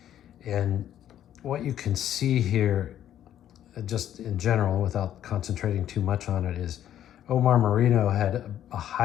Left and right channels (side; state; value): right; quieter; 11.1 dB